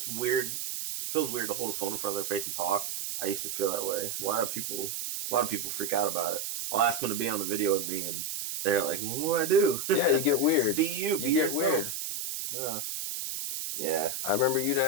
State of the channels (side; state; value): right; noise; hiss, 4 dB below the sound